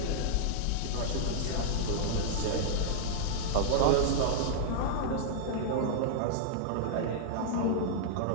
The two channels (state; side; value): different; both; correlation -0.01